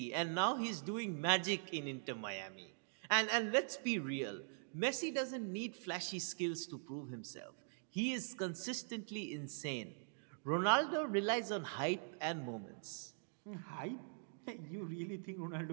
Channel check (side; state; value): left; silent; digital silence